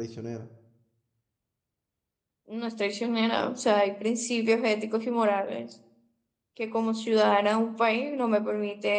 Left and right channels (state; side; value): identical; both; correlation 1.00